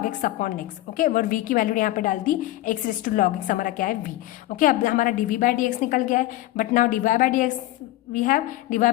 x upon x। Okay, और v की वैल्यू यहाँ पे डाल दी x raise to log x हमारा क्या है v। ओके, अब हमारा dv/dx निकल गया है, but now dy/dx we have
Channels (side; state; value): right; quieter; 16.3 dB